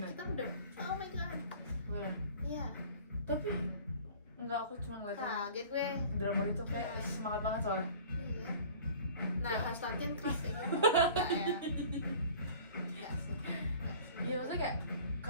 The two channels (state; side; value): inverted; both; correlation -0.46